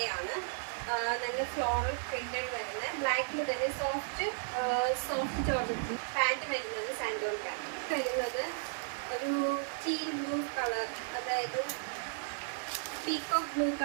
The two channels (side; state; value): left; silent; digital silence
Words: നല്ല ഫ്ലോറൽ പ്രിന്റഡ് വരുന്ന ബ്ലാക്കിൽ തന്നെ സോഫ്റ്റ് ജോർജറ്റ്. പാൻറ് വരുന്നത് സാൻഡോൺ പാൻറ് വരുന്നത് ഒരു ടീൽ ബ്ലൂ കളർ, അതായത് പീകോക്ക് ബ്ലൂ